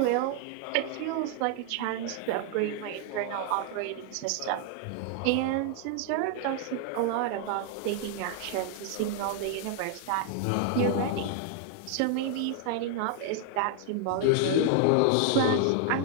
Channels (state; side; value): different; both; correlation 0.00